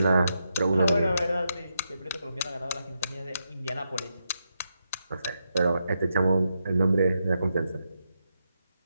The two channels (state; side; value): inverted; both; correlation -0.84